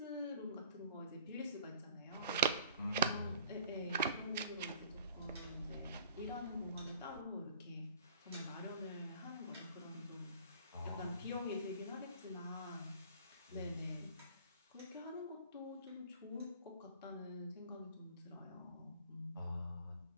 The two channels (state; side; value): inverted; both; correlation -0.47